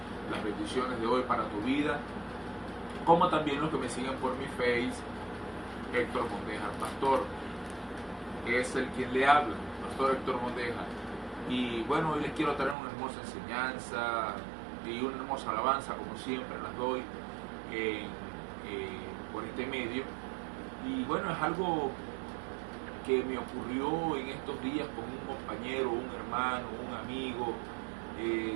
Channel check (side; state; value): left; drops out; at 12.8 s